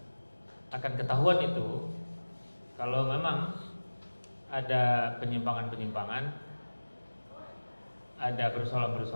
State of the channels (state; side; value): inverted; both; correlation -1.00